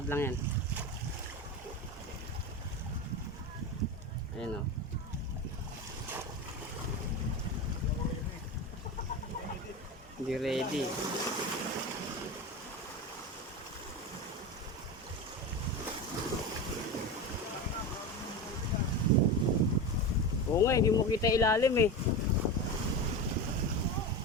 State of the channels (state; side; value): normal; both; correlation 0.23